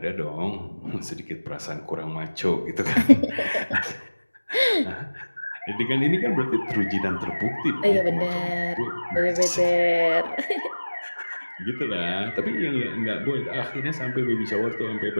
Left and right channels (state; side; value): inverted; both; correlation -1.00